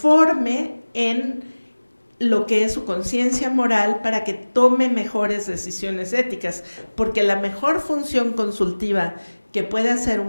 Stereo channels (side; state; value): both; inverted; correlation -1.00